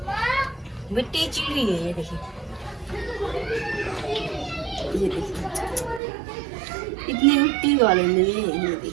मिट्टी चिड़ी है। ये देखिए, ये देखिए इतनी मिट्टी वाले में ये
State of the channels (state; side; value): drops out; left; at 6.0 s